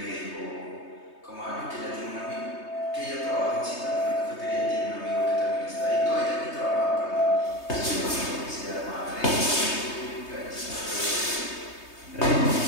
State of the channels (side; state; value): right; late; 3.2 ms